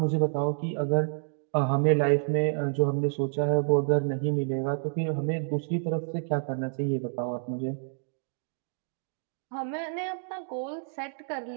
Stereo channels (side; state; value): left; silent; 59 dB below the other